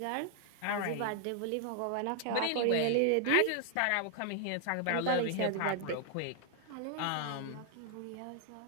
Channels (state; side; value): different; both; correlation 0.00